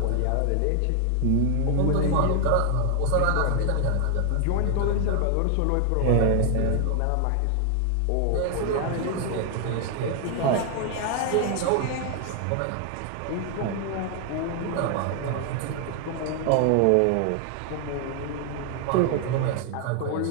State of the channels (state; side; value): different; both; correlation 0.00